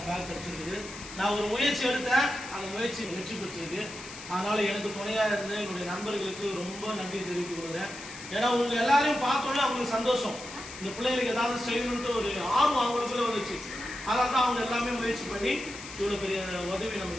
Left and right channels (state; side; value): noise; left; hiss, 14 dB below the sound